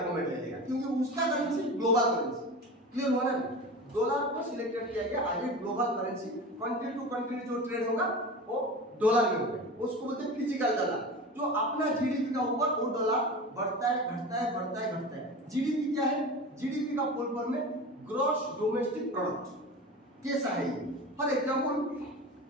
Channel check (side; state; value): both; normal; correlation 0.31